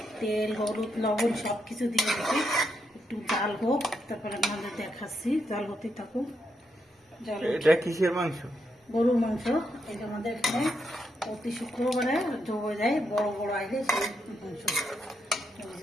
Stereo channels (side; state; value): both; normal; correlation 0.80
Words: তেল, হলুদ, লবণ সব কিছু দিয়ে দিচ্ছি। একটু জাল হোক, তারপরে আমাদের দেখাচ্ছি। জাল হতে থাকুক। এটা কিসের মাংস? গরুর মাংস। এই যে আমাদের এখানে প্রতি শুক্রবারে জমে যায় বড় বড় আইলে সেই মাংস।